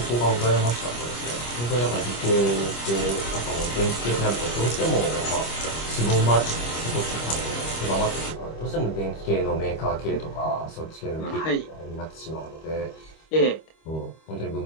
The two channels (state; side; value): late; right; 25 ms